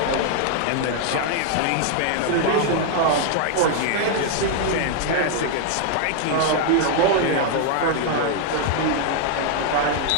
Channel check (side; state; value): both; different; correlation 0.00